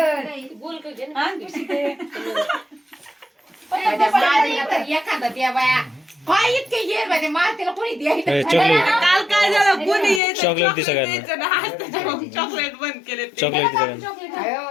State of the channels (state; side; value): drops out; right; at 10.2 s